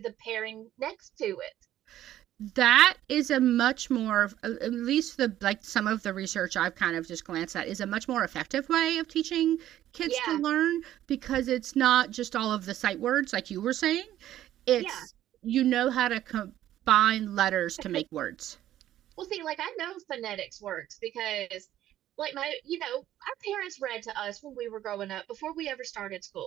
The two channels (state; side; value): quieter; left; 12.8 dB